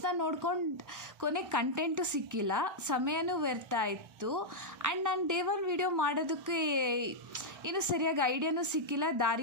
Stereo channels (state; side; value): late; left; 1.3 ms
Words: ನೋಡ್ಕೊಂಡು ಕೊನೆಗೆ ಕಂಟೆಂಟು ಸಿಕ್ಕಿಲ್ಲ, ಸಮಯನೂ ವ್ಯರ್ಥ ಆಯಿತು. ಆ್ಯಂಡ್ ನಾನು ಡೇ 1 ವಿಡಿಯೋ ಮಾಡೋದಕ್ಕೆ ಇನ್ನೂ ಸರಿಯಾಗಿ ಐಡಿಯಾನೂ ಸಿಕ್ಕಿಲ್ಲ,